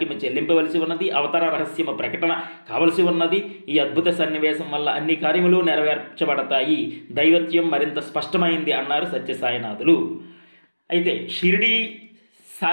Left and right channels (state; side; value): inverted; both; correlation -1.00